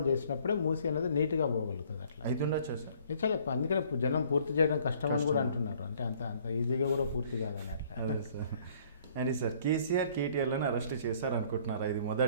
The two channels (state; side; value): inverted; both; correlation -0.59